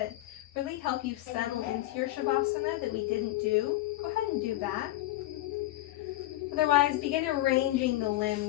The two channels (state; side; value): quieter; right; 16.5 dB